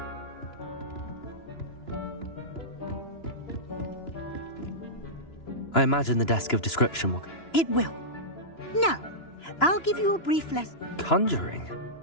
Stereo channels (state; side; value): late; right; 2.9 ms